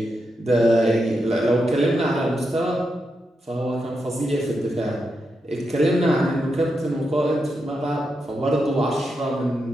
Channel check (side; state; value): both; normal; correlation 0.85